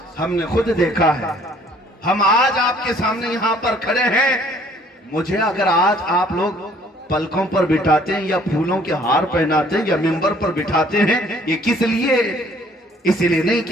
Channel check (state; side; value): normal; both; correlation 0.59